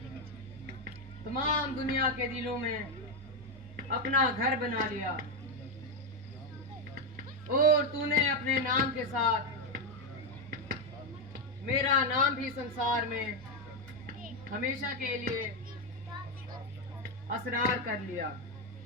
तमाम दुनिया के दिलों में अपना घर बना लिया और तूने अपने नाम के साथ मेरा नाम भी संसार में हमेशा के लिए असरार कर लिया।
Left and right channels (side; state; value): both; normal; correlation 0.06